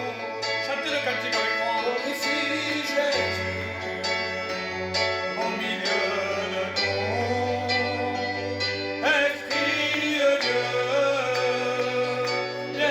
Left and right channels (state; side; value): identical; both; correlation 1.00